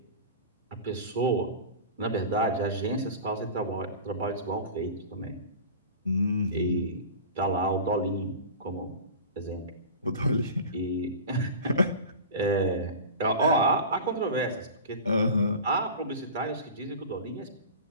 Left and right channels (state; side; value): inverted; both; correlation -0.34